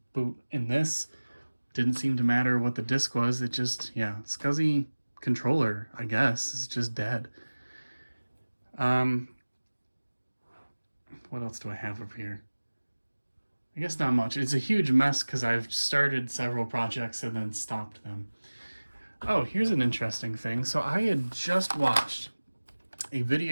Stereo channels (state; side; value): inverted; both; correlation -1.00